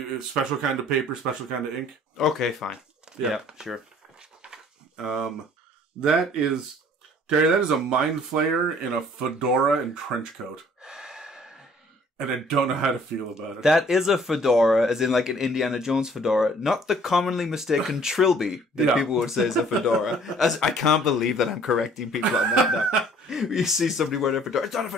Special kind of paper, special kind of ink. Okay, fine. Yeah, sure. That is, Terry, that is a mind flayer in a fedora and trench coat. And I don't know how to feel about it. That is a fedora, as in like an Indiana Jones fedora, not the commonly mistaken trilby that people would say is a fedora. I can't believe that I'm correcting people on that now. You see somebody wearing a fedora, it's not a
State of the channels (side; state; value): both; normal; correlation 0.56